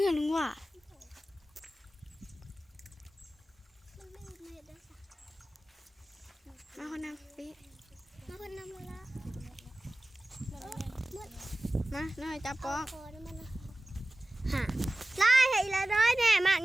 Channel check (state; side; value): normal; both; correlation 0.96